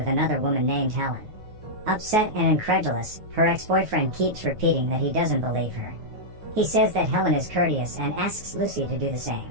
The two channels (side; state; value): left; late; 9.5 ms